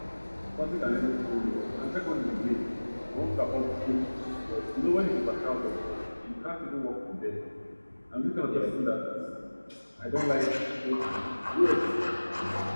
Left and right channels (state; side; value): inverted; both; correlation -1.00